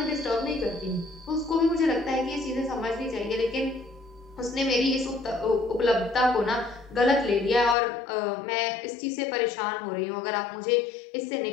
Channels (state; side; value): drops out; right; at 7.8 s